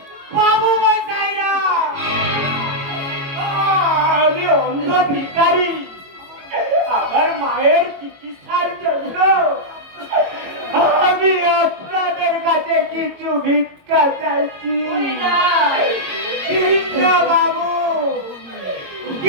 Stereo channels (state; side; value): late; left; 22 ms